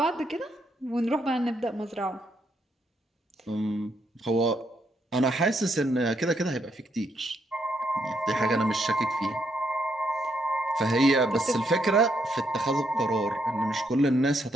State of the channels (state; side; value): normal; both; correlation 0.76